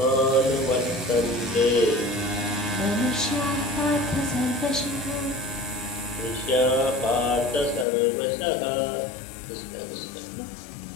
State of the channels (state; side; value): drops out; right; at 7.9 s